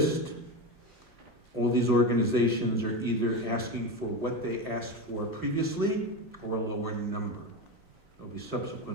all these organizations are either asking for what they asked for previously or a lower number. There'll be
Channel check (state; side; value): normal; both; correlation 0.19